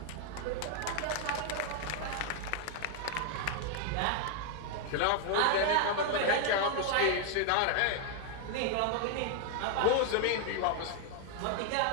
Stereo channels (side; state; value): both; different; correlation 0.00